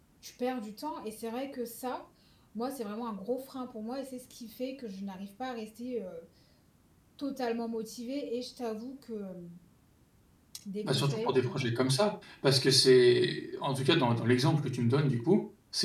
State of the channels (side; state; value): both; identical; correlation 1.00